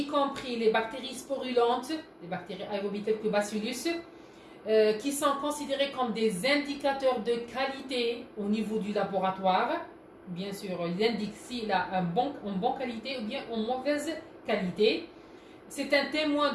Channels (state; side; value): identical; both; correlation 1.00